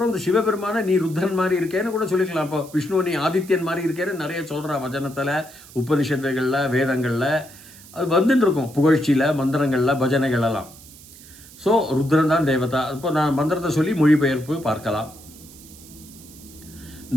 இந்த சிவபெருமான நீ ருத்ரன் மாதிரி இருக்கேன்னு கூட சொல்லிக்கலாம். இப்போ விஷ்ணு நீ ஆதித்யன் மாதிரி இருக்கேன்னு நிறைய சொல்கிறா வச்சனத்தில், உபனிஷத்துகளில், வேதங்களில் அது வந்துட்டு இருக்கும். புகழ்ச்சியில், மந்திரங்களில், பஜனைகளெல்லாம். ஸோ ருத்ரன் தான் தேவதா. இப்போ நான் மந்திரத்தை சொல்லி மொழிபெயர்ப்பு பார்க்கலாம்.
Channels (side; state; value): right; noise; hiss, 20 dB below the sound